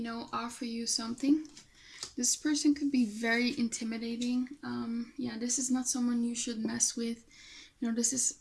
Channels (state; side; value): identical; both; correlation 1.00